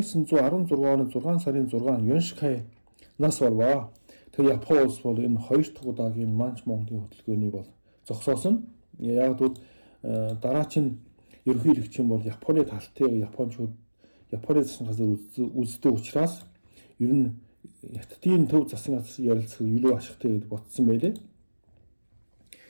сарын 6 Юншкай нас болваа. Тэгээ Япон улс бол энэ хоёр дахь удаагийн Манч Монголын хөдөлгөөний бол зогсоосон. Яг бол дараач нь ерөнхийлөгч бол Японы талтыг Япончууд Японы засгийн газар үздэг учраас ер нь Хятадын төв засгийн газар ярилцах илүү ашигтай гэж бодсон байлээ.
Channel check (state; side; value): inverted; both; correlation -1.00